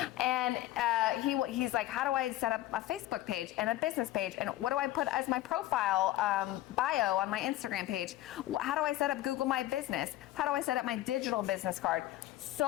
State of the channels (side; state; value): right; quieter; 15.2 dB